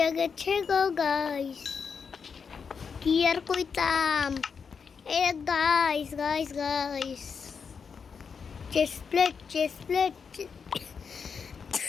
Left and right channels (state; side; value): quieter; right; 6.0 dB